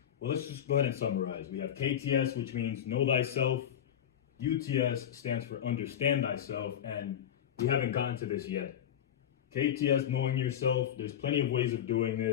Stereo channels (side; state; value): right; quieter; 9.7 dB